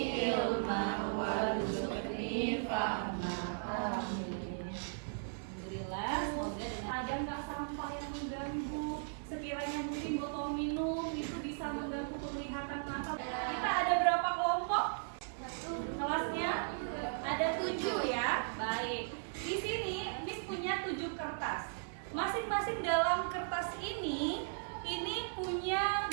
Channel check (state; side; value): silent; left; 53 dB below the other